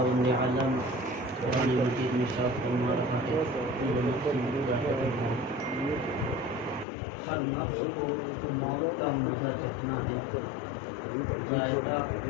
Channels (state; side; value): drops out; right; at 6.9 s